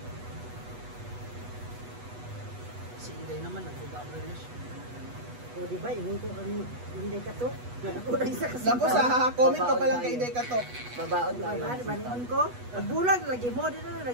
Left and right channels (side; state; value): left; late; 8.2 ms